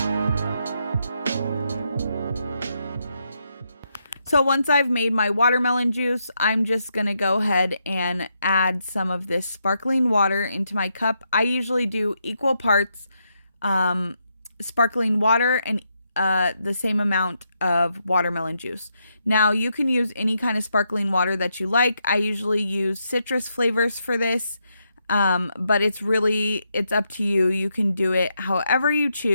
So once I've made my watermelon juice, I'm just going to go ahead and add some of this sparkling water into my cup. I usually do equal parts sparkling water and the same amount of watermelon juice. Now you can use any kind of sparkling water that you like. I usually use citrus flavors for this, but it's up to you. You can do it however you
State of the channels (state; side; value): inverted; both; correlation -0.80